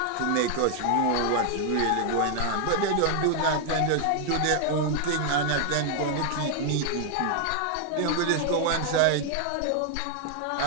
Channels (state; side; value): different; both; correlation 0.00